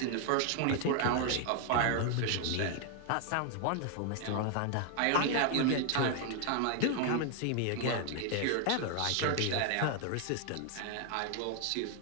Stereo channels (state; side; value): different; both; correlation 0.00